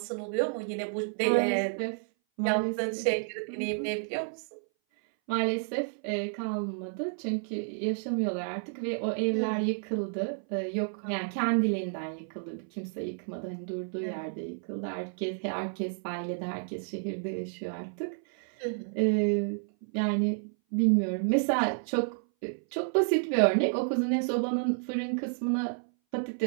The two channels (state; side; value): silent; left; 57 dB below the other